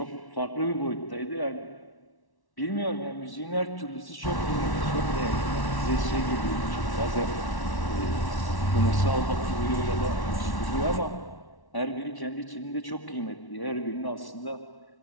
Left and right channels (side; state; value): right; late; 1.1 ms